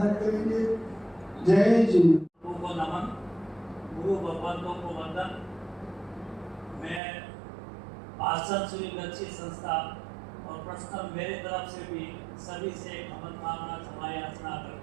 करेंगे। जय जी। को नमन, गुरु भगवंतों को वंदन। मैं भाषण सुनी अच्छी संस्था और प्रश्न मेरे तरफ से भी सभी से क्षमत मांगना क्षमा याचना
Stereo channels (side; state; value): left; drops out; at 7.0 s